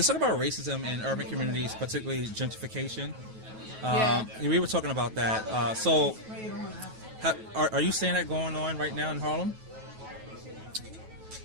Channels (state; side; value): late; left; 9.2 ms